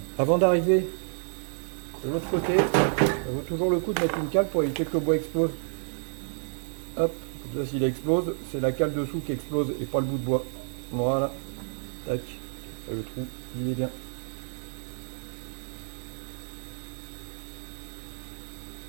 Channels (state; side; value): silent; left; digital silence